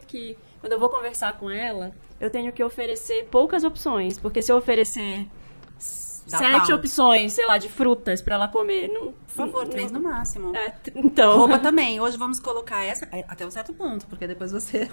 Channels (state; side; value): inverted; both; correlation -1.00